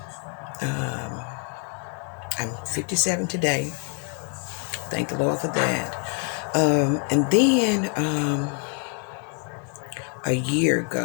I'm 57 today. Thank the Lord for that. And then a year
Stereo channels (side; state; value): right; quieter; 35.9 dB